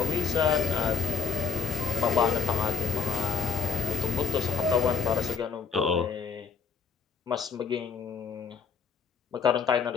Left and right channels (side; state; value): right; quieter; 5.8 dB